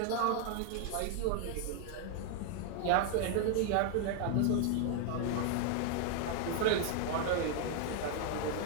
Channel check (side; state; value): both; different; correlation 0.00